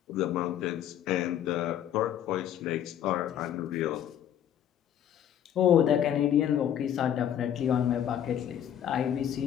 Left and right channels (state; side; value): quieter; right; 10.2 dB